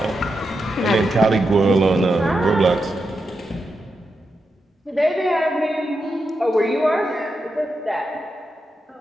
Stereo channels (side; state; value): both; normal; correlation 0.86